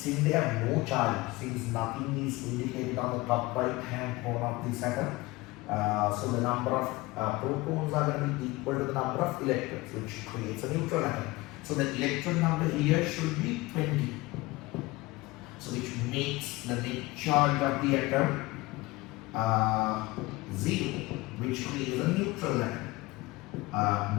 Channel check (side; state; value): right; quieter; 21.2 dB